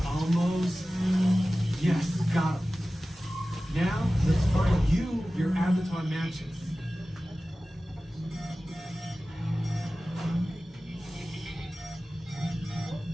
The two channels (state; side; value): normal; both; correlation 0.96